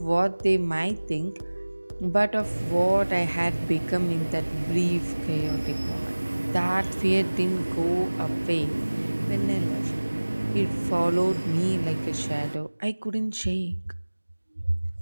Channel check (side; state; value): both; inverted; correlation -1.00